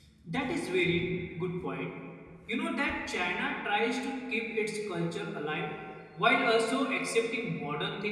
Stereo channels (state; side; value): identical; both; correlation 1.00